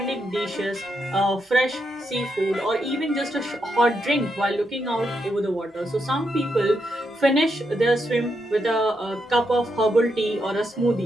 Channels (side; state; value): both; normal; correlation 0.81